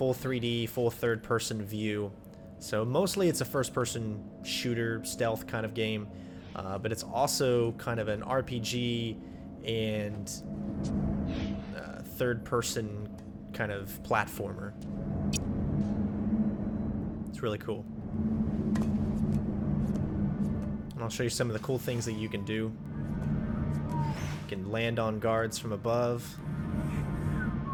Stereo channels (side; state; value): both; identical; correlation 1.00